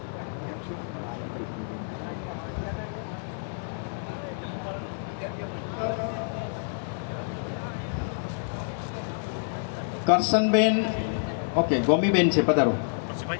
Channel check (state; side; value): silent; right; digital silence